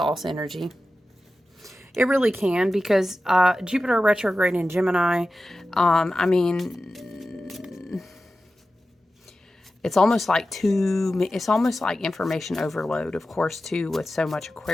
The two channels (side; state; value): both; normal; correlation 0.93